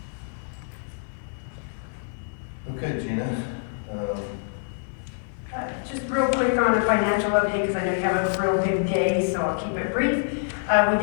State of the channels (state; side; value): silent; right; digital silence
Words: Okay, Gina. Just real quick on the financial update, because I know you have a real big day, so I'll keep it brief. We